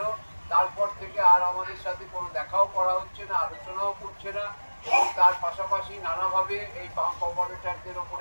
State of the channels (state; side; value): inverted; both; correlation -1.00